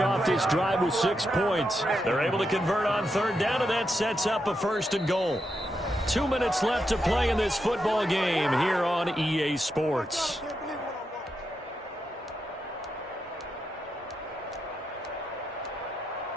this drive with 6 points. They're able to convert on third down, and that sets up a first and goal. 2 minutes left to play in this football game here on EA Sports.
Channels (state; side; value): normal; both; correlation 0.85